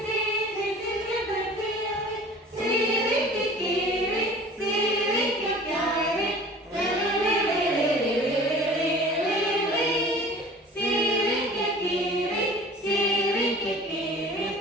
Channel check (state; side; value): normal; both; correlation 0.44